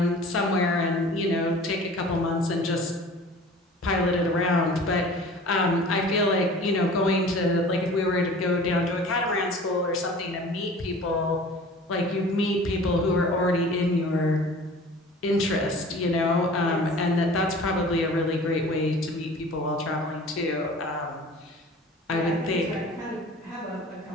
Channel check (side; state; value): both; normal; correlation 0.43